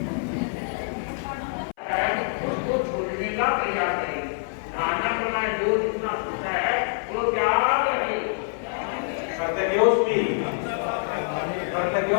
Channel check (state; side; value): silent; right; 58 dB below the other